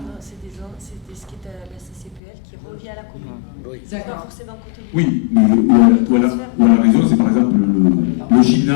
c'est ce qui est à la CCPL qui revient à la commune. Oui. C'est pas D'accord. forcément Côté-Lube. Oui, mais où elle a raison, c'est par exemple le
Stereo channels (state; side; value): drops out; right; at 2.2 s